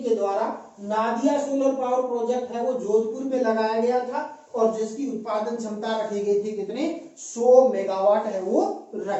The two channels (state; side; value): identical; both; correlation 1.00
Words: के द्वारा नादिया सोलर पावर प्रोजेक्ट है वो जोधपुर में लगाया गया था और जिसकी उत्पादन क्षमता रखी गई थी कितनी, 100 मेगावाट है वो